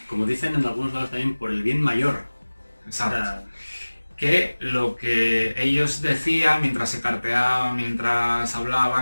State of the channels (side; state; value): both; inverted; correlation -1.00